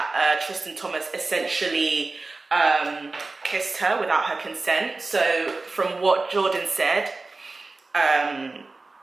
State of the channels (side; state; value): left; quieter; 3.5 dB